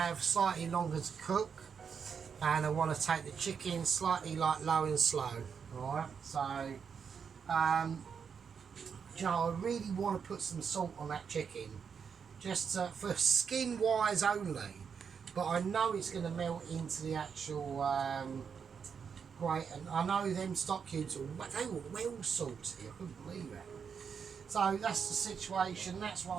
slightly longer to cook, and I want to take the chicken slightly like low and slow. Alright, so you know, I really want to put some salt on that chicken, just for skin wise only, but I know it's going to melt into the actual grate, and I know them stock cubes they were well salty. I couldn't believe it. So that's the situation. That's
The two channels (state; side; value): quieter; left; 6.6 dB